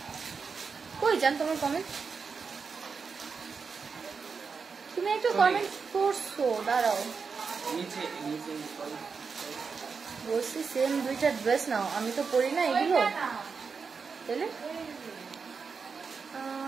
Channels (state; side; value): quieter; left; 5.3 dB